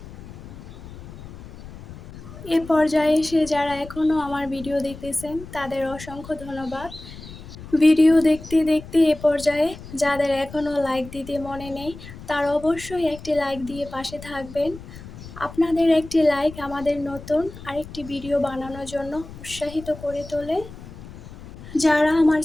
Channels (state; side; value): noise; left; rumble, 15 dB below the sound